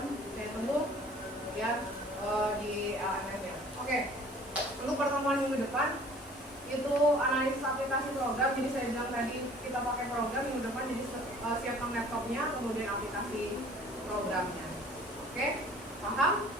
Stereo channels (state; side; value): normal; both; correlation 0.51